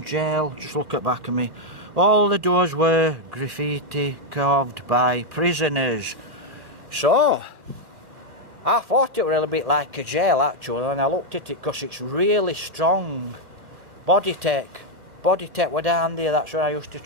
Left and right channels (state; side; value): late; left; 2.2 ms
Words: jail. Just look at back of me. All the doors were graffiti carved by prisoners. So I thought it were a little bit like a jail actually, and I looked at it because it's really strong. Body tech were down there. That's where I used to